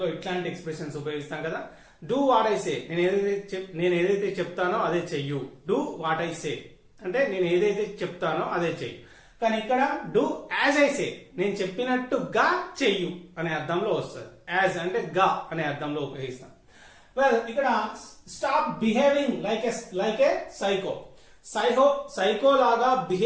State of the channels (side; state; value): both; identical; correlation 1.00